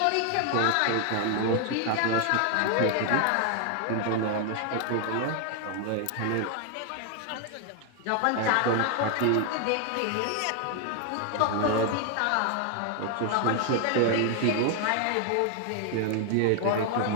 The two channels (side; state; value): both; different; correlation 0.00